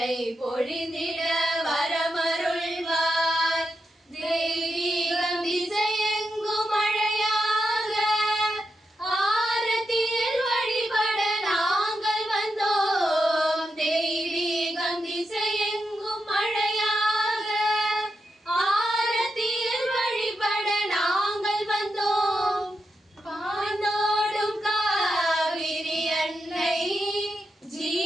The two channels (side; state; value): both; normal; correlation 0.86